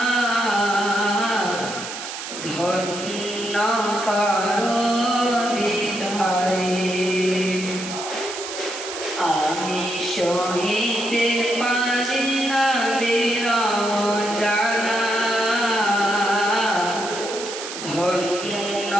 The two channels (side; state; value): right; noise; hiss, 8 dB below the sound